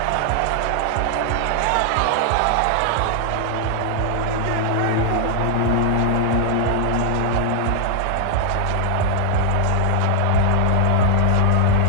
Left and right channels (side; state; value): both; different; correlation 0.00